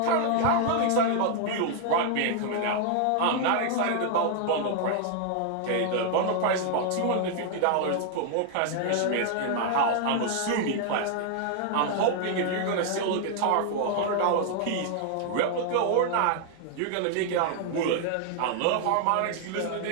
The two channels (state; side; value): different; both; correlation 0.00